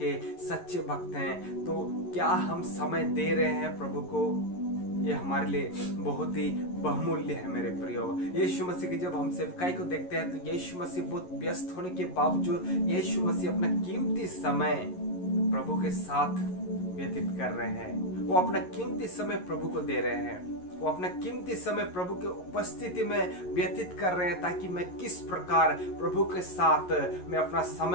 सच्चे भक्त हैं, तो क्या हम समय दे रहे हैं प्रभु को? ये हमारे लिए बहुत ही बहुमूल्य है मेरे प्रियो। यीशु मसीह की जब हम सेवकाई को देखते हैं तो यीशु मसीह बहुत व्यस्त होने के बावजूद यीशु मसीह अपना कीमती समय प्रभु के साथ व्यतीत कर रहे हैं। वो अपना कीमती समय प्रभु को दे रहे हैं, वो अपना कीमती समय प्रभु के उपस्थिति में व्यतीत कर रहे हैं, ताकि मैं किस प्रकार प्रभु के साथ मैं अपना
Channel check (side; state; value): right; late; 11 ms